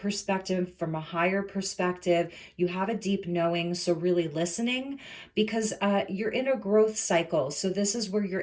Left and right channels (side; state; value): both; identical; correlation 1.00